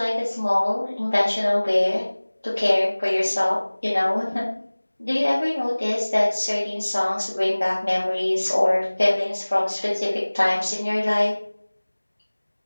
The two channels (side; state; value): both; inverted; correlation -1.00